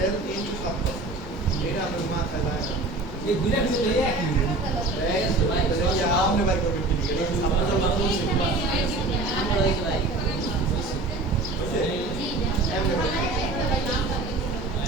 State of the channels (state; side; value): quieter; left; 3.1 dB